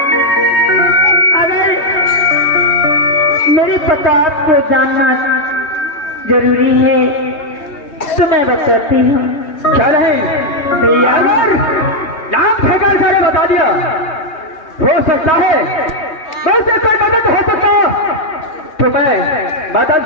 अगर मेरे पता आपको जानना जरूरी है तो मैं बताती हूँ। क्या नहीं भैया अगर नाम ठेकर सारे बता दिया हो सकता है बस कोई मदद हो सकता तो मैं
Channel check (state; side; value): late; right; 2.8 ms